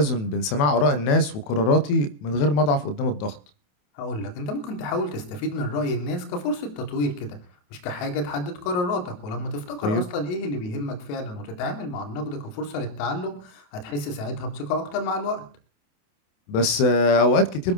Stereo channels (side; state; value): right; late; 28 ms